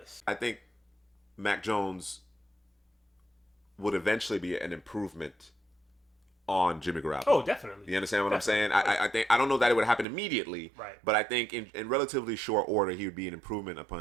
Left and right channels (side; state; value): left; drops out; at 10.1 s